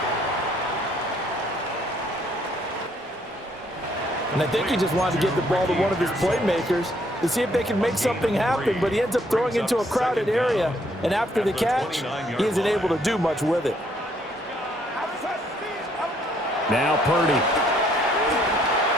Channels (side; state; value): both; normal; correlation 0.67